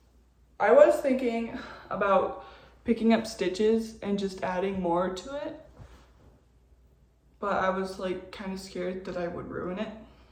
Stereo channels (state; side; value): identical; both; correlation 1.00